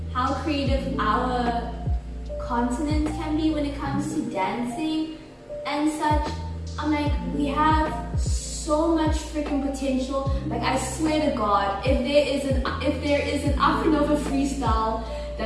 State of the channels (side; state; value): both; identical; correlation 1.00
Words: how creative our continent can be when it comes to dancing and such, I'm like, we have so much freaking potential. Like, I swear to God, if there is an Afro-Nova freestyle